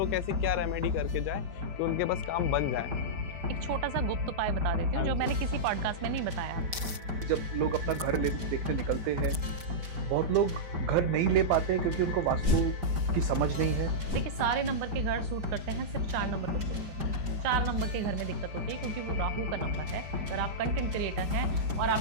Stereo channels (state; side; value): late; left; 5.1 ms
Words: ऐसी क्या रेमेडी करके जाए कि उनके पास काम बन जाए? एक छोटा सा गुप्त उपाय बता देती हूँ जो मैंने किसी पॉडकास्ट में नहीं बताया। जब लोग अपना घर देखने निकलते हैं, बहुत लोग घर नहीं ले पाते हैं क्योंकि उनको वास्तु की समझ नहीं है। देखिए सारे नंबर के घर सूट करते हैं, सिर्फ 4 नंबर को सूट करते हैं। 4 नंबर के घर में दिक्कत होती है क्योंकि वो राहु का नंबर है। अगर आप कंटेंट क्रिएटर हैं और